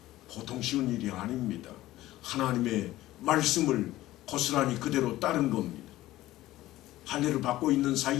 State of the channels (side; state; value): right; quieter; 16.0 dB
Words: 보통 쉬운 일이 아닙니다. 하나님의 말씀을 고스란히 그대로 따른 겁니다. 할례를 받고 있는